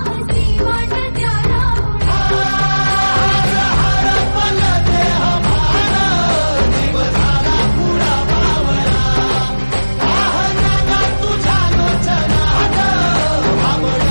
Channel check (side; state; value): both; inverted; correlation -1.00